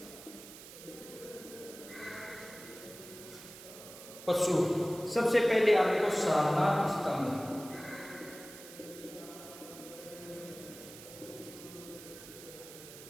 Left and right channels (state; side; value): noise; right; hiss, 15 dB below the sound